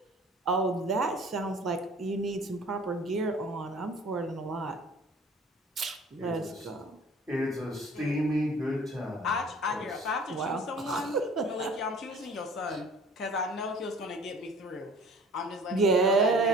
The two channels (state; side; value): normal; both; correlation 0.48